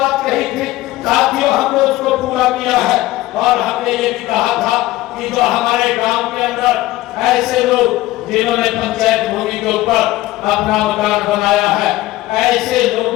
कही थी साथियों, हमने उसको पूरा किया है और हमने ये भी कहा था कि जो हमारे गांव के अंदर ऐसे लोग जिन्होंने पंचायत भूमि के ऊपर अपना मकान बनाया है, ऐसे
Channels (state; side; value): quieter; right; 17.1 dB